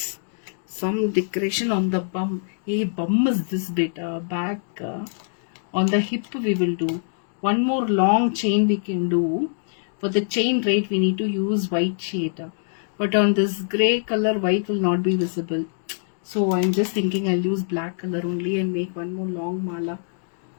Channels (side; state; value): right; silent; digital silence